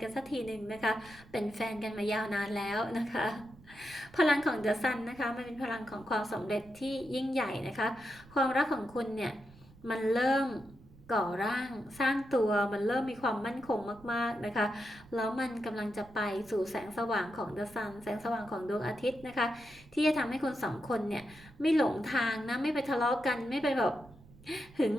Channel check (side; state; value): right; noise; rumble, 23 dB below the sound